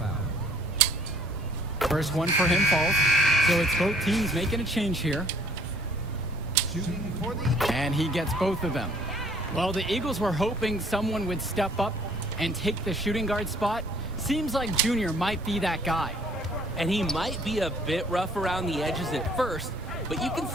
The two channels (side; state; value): both; normal; correlation 0.58